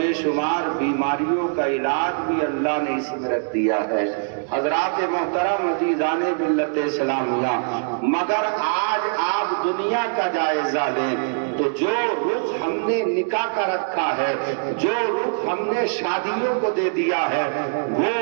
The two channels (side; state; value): left; silent; digital silence